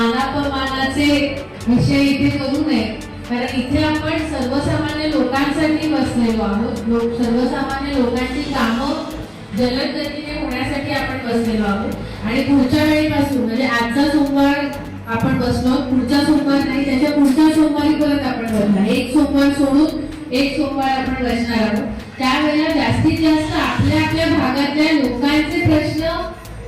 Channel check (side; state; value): both; identical; correlation 1.00